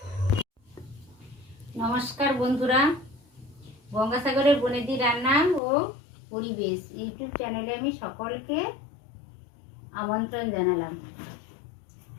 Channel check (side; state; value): right; drops out; at 5.6 s